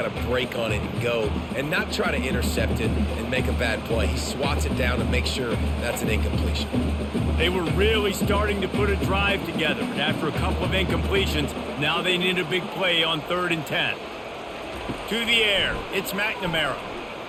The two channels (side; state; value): both; identical; correlation 1.00